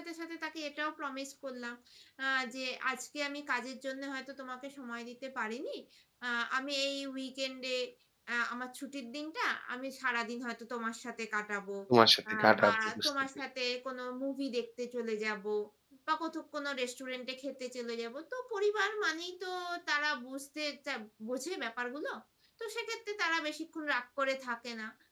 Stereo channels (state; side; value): identical; both; correlation 1.00